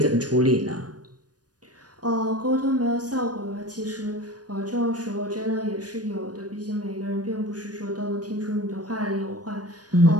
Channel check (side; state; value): left; late; 0.69 ms